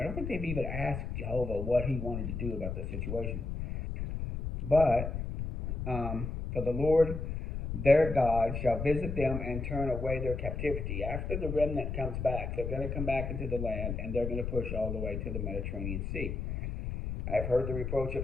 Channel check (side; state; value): left; noise; rumble, 4 dB below the sound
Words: don't think they've even asked Jehovah what he wanted to do about the situation. But for the Lord their God shall visit them and turn away their captivity. After the remnant comes back, they're going to come back into the land, and they're going to push all the way to the Mediterranean Sea. I've heard the reproach